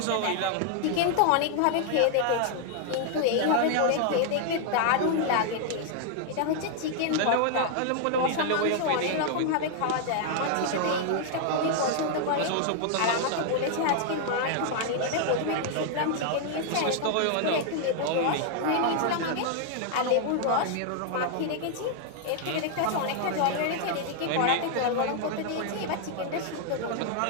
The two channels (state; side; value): different; both; correlation 0.00